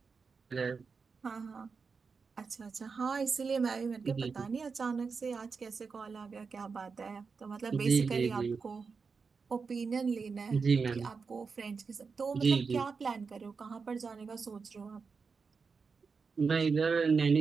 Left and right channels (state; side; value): quieter; left; 5.1 dB